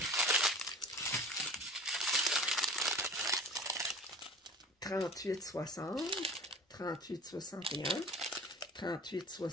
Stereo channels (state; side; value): normal; both; correlation 0.40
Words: 38, 60, 38, 61, 38,